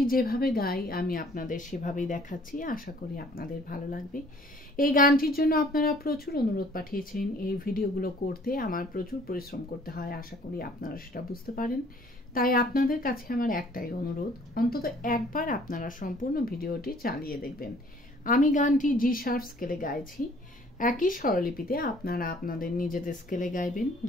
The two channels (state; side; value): normal; both; correlation 0.56